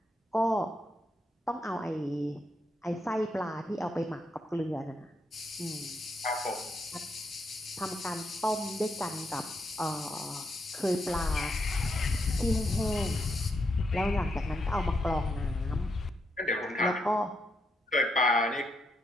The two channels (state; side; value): normal; both; correlation 0.80